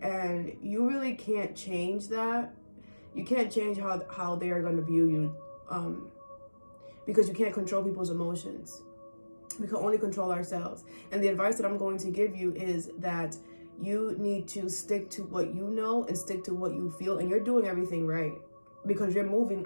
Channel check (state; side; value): inverted; both; correlation -1.00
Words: And you really can't change that. You can't change how they are going to view you, because you can't control people's emotions. We can only control ourselves. And the advice that I'm going to give you is that you need to stick to what you know and stick to what you feel. And you're doing everything right, because you're moving